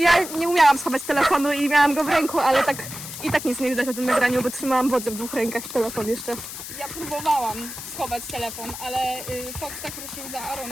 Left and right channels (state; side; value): noise; left; hiss, 10 dB below the sound